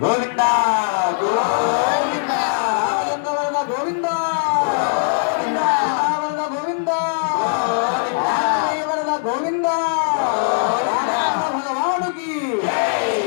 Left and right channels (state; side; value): silent; right; 66 dB below the other